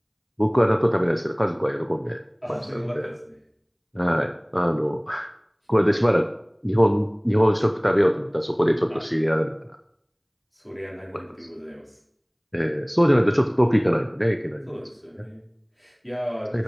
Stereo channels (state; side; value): identical; both; correlation 1.00